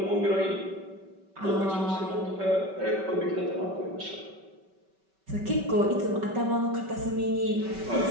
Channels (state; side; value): late; left; 5.2 ms